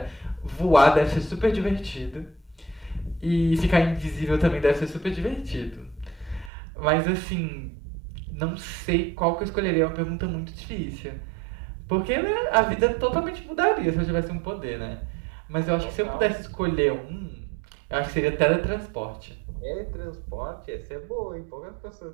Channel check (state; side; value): drops out; left; at 6.5 s